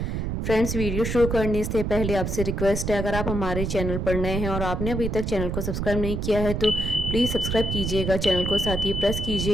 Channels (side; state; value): right; noise; rumble, 2 dB below the sound